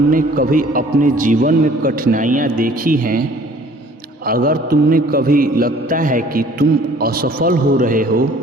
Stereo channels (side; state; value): both; normal; correlation 0.54